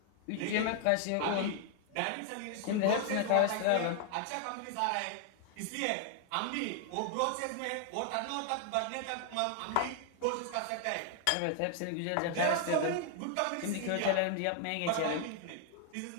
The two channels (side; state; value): both; different; correlation 0.00